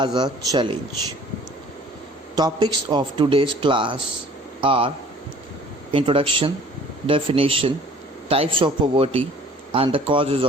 a Challenge. Topics of today's class are introduction, definition, types of poverty and the causes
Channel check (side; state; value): both; normal; correlation 0.52